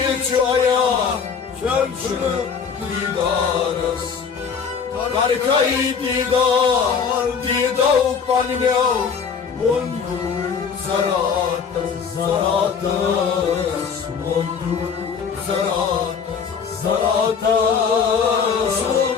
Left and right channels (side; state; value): right; quieter; 6.4 dB